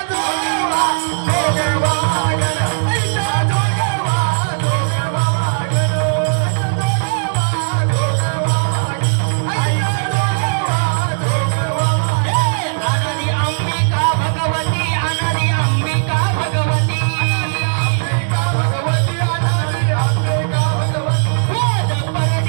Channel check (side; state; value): left; silent; digital silence